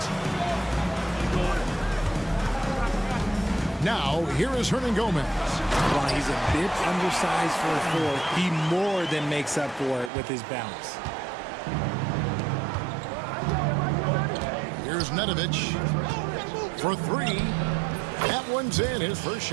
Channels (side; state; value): left; drops out; at 10.1 s